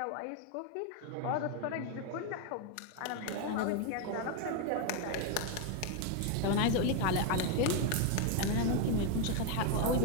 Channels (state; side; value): different; both; correlation 0.01